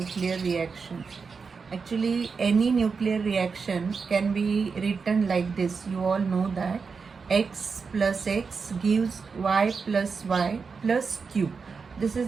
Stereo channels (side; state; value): left; quieter; 5.2 dB